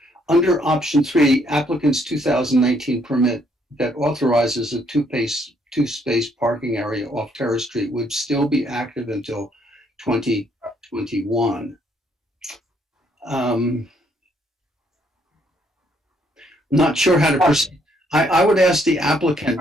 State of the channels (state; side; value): normal; both; correlation 0.69